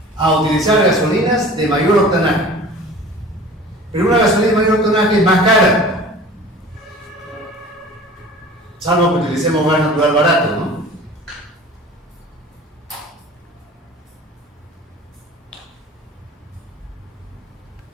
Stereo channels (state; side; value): normal; both; correlation 0.42